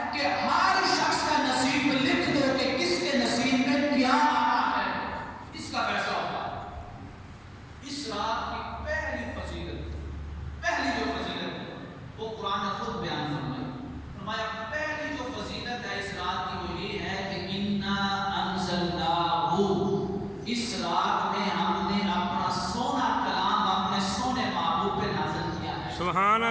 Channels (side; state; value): both; identical; correlation 1.00